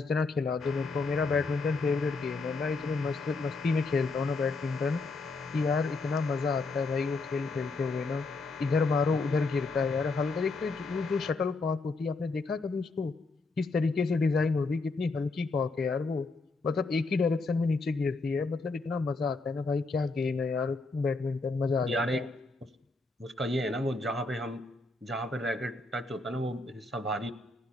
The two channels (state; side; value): quieter; right; 3.7 dB